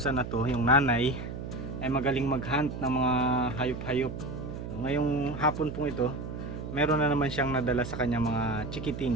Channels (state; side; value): noise; right; hum, 8 dB below the sound